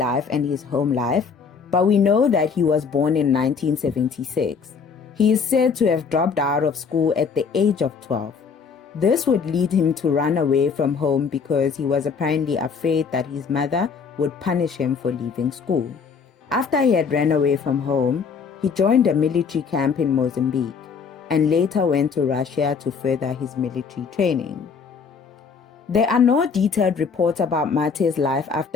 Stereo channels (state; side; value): quieter; right; 5.8 dB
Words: and his home life, but we know that he was born in 1976. He is said to have dropped out of school at the age of 12. This would lead him to run away from home because he was apparently afraid that his mother would punish him for leaving school. After he had run away from home, he joined a military camp in Mozambique and later went to Russia to further his military training. There are no detailed reports about Mathe's life